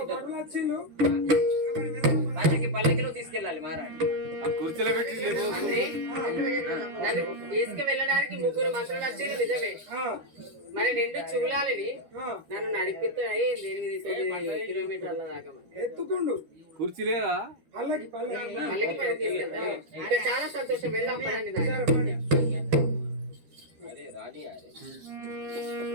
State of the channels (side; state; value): left; late; 12 ms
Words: పల్లకిలో తీసుకెళ్ళాలి మహారాజు. నన్ను తీసుకువెళ్ళడానికి 3 మంత్రులు వచ్చారు నిజమే. మరి 2 చూలాలని నన్ను నడిపిస్తాయి 8-9 కిలోమీటర్ల దాకా ఎత్తుకుండు కుర్చీ లేదా పల్లకి పల్లకి పని తీసుకెళ్తాను. ఇంకా చాలా సంతోషం. వెళ్దాం పదండి.